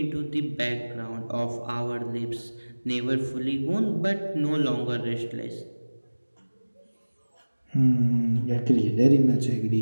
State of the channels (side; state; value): both; inverted; correlation -1.00